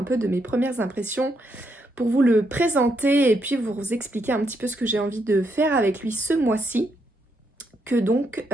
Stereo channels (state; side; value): normal; both; correlation 0.78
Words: peu de mes premières impressions, pour vous le présenter et puis vous expliquer un petit peu ce que j'ai envie de faire avec lui ce mois-ci, que donc